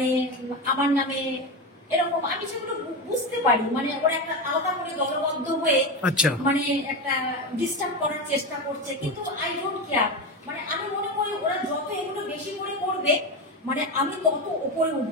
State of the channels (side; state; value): both; normal; correlation 0.18